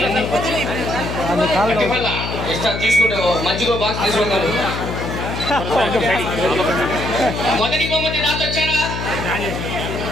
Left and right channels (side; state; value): left; noise; hum, 5 dB below the sound